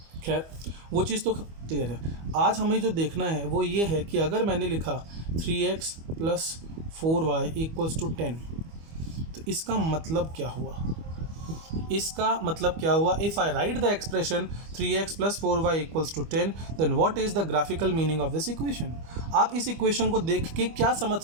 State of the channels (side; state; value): left; late; 25 ms